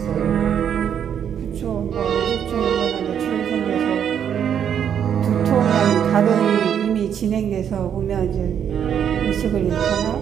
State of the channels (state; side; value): quieter; left; 8.6 dB